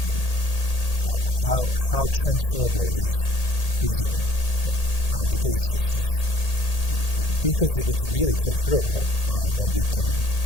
then how transferable is reasoning? Right? Because if it's really transferable, then we can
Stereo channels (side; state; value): right; late; 1.8 ms